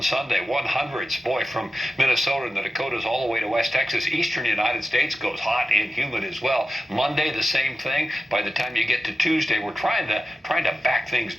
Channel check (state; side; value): normal; both; correlation 0.92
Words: Sunday, 100s. Boy, from Minnesota and the Dakotas all the way to West Texas. Eastern United States goes hot and humid as well. Monday, the same thing. By the time you get to Tuesday, we're trying to back things